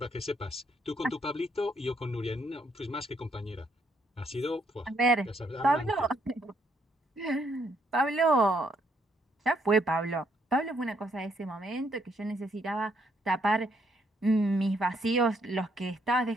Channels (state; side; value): normal; both; correlation 0.72